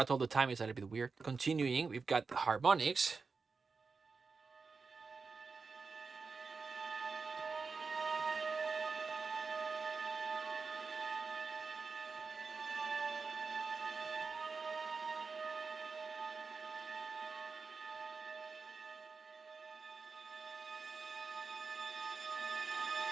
all the time is a little bit weird. Continuing, we've got the harmonics.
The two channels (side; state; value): left; quieter; 4.7 dB